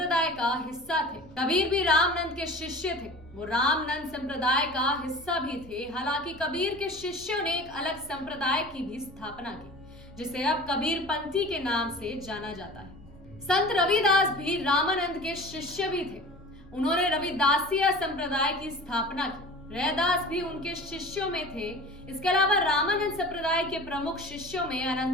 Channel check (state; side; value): normal; both; correlation 0.39